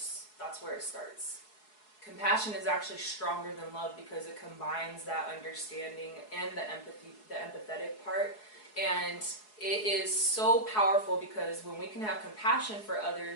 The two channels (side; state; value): right; late; 4.7 ms